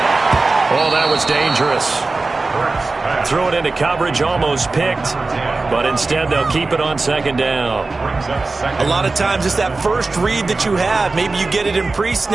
Oh, that was dangerous. Threw it into coverage, almost picked, but instead they'll keep it on second down. A lot of times it's that first read that you have. Maybe you get it in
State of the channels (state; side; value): quieter; left; 3.6 dB